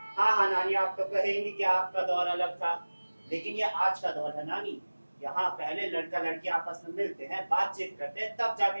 हाँ हाँ नानी, आप तो कहेंगी कि आपका दौर अलग था, लेकिन ये आज का दौर है नानी। यहाँ पहले लड़का लड़की आपस में मिलते हैं, बातचीत करते हैं, तब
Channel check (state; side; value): inverted; both; correlation -1.00